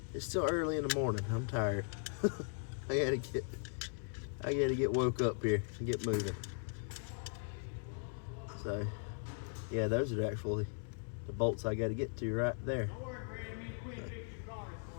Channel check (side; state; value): right; silent; 52 dB below the other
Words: It's still early in the morning. I'm tired. I gotta get woke up here and get moving. So yeah, those are actually the bolts I gotta get to right there. Don't worry, Brad. Me and Quinn fix your car this